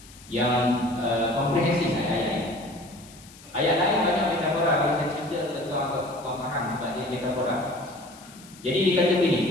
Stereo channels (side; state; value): left; noise; hiss, 21 dB below the sound